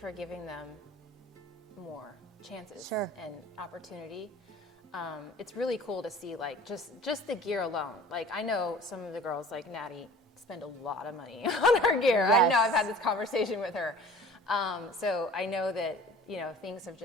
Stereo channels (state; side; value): normal; both; correlation 0.45